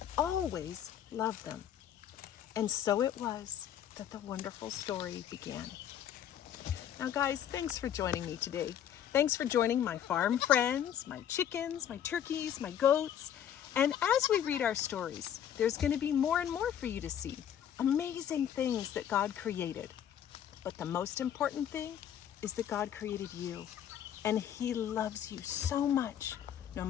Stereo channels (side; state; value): right; quieter; 9.8 dB